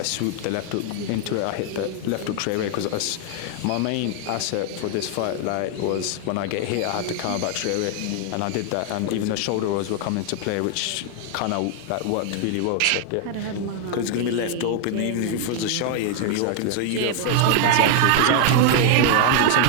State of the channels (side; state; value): both; different; correlation 0.00